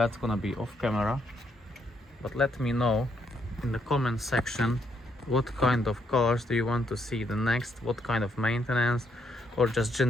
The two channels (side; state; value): both; normal; correlation 0.74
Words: gonna be off camera. But let me know in the comment section what kind of cars do you want to see the next, what kind of maintenance, or just